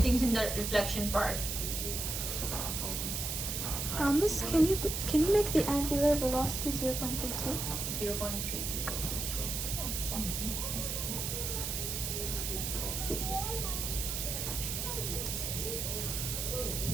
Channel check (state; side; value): noise; right; hiss, 2 dB below the sound